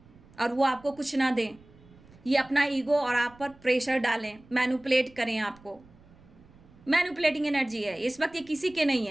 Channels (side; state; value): right; noise; rumble, 26 dB below the sound